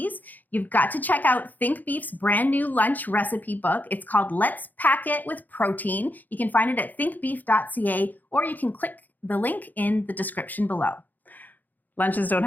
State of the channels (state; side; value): late; right; 0.084 ms